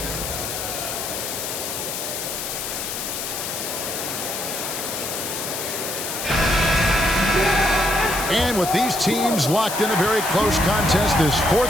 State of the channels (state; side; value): noise; left; hiss, 5 dB below the sound